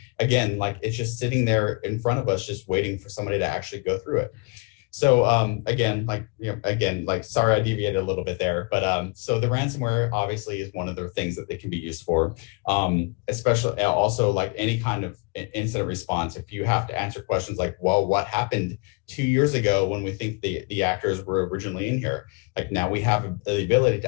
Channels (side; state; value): right; quieter; 29.2 dB